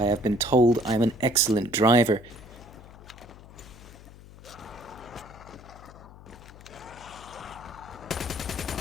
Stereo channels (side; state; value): left; noise; hum, 19 dB below the sound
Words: have been told I'm an excellent driver.